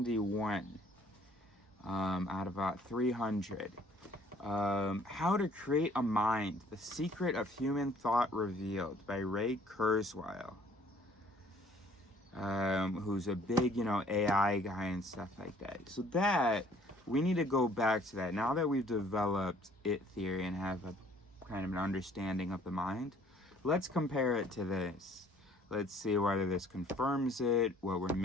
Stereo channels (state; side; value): normal; both; correlation 0.58